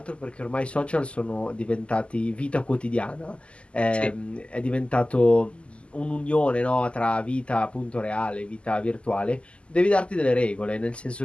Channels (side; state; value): right; late; 0.054 ms